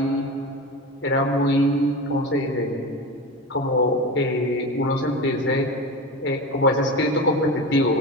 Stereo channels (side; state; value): both; normal; correlation 0.26